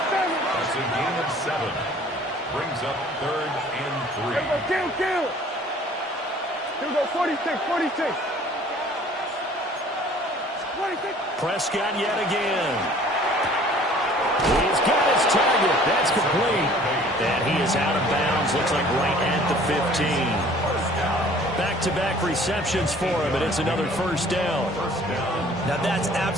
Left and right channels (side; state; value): both; normal; correlation 0.52